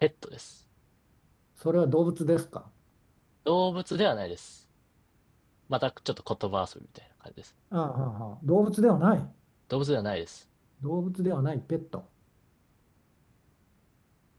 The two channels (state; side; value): identical; both; correlation 1.00